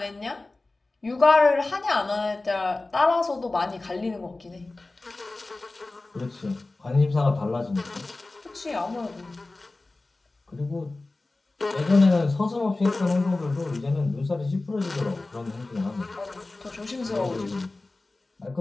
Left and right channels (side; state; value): right; quieter; 3.1 dB